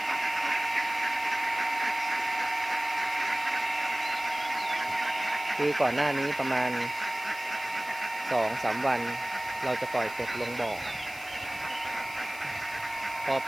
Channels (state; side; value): noise; left; hiss, 17 dB below the sound